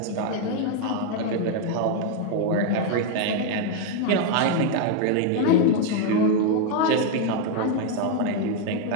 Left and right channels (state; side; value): different; both; correlation 0.01